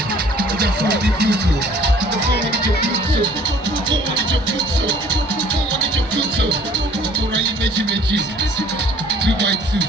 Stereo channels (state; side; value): normal; both; correlation 0.54